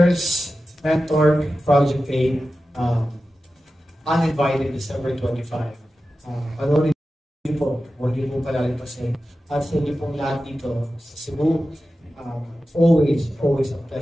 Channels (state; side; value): normal; both; correlation 0.93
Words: Mentor, Project 8, uninvited December 25. Panoorin niyo po, huwag niyo po palalipasin. At sa inyo pong lahat dito sa Cebu, always a